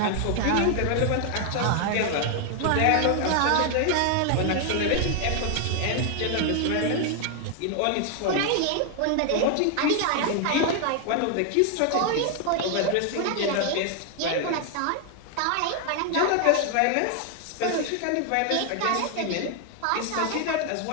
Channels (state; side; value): different; both; correlation 0.00